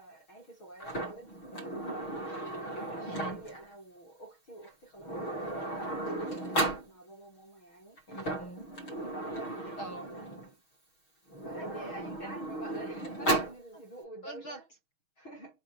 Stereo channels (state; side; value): late; right; 6.3 ms